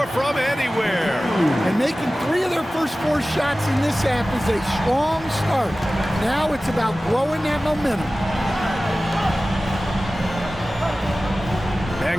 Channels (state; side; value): normal; both; correlation 0.96